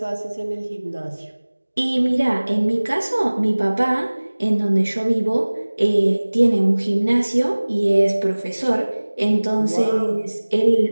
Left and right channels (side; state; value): both; inverted; correlation -1.00